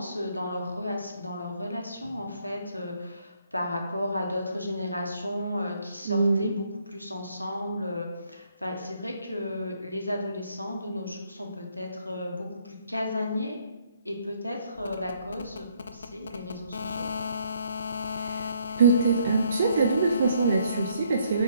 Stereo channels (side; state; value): both; inverted; correlation -0.69